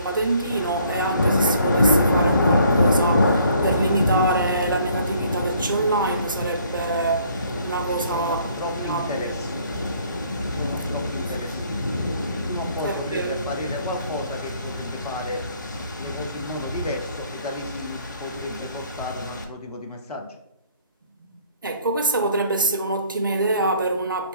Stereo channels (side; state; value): both; inverted; correlation -0.61